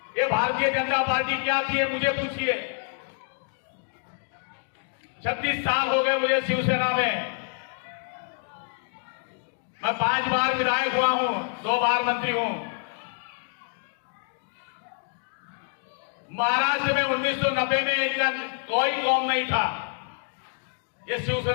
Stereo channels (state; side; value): silent; right; 56 dB below the other